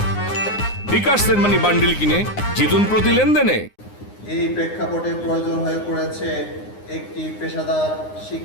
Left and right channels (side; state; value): right; late; 9.7 ms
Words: বিকাশ সেনমানি বান্ডেল কিনে জিতুন প্রতি লেনদেনে। এই প্রেক্ষাপটে প্রয়োজন হয়ে পড়েছে একটি পেশাদার